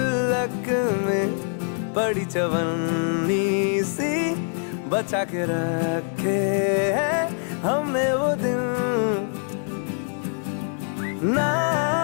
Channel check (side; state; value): right; silent; 62 dB below the other